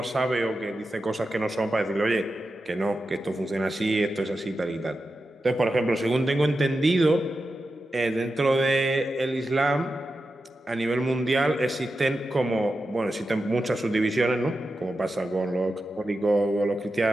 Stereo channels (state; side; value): normal; both; correlation 0.90